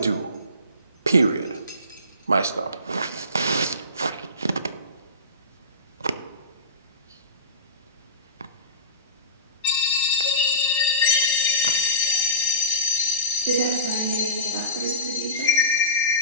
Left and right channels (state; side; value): inverted; both; correlation -0.33